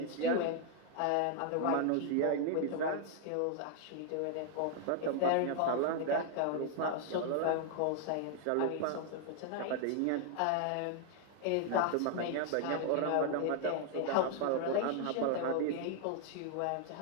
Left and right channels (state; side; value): different; both; correlation 0.00